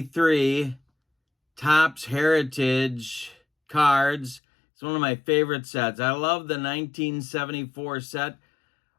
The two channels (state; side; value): drops out; right; at 4.4 s